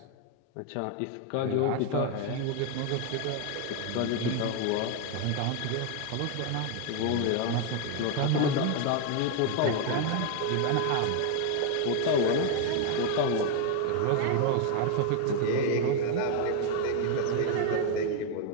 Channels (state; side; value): different; both; correlation 0.01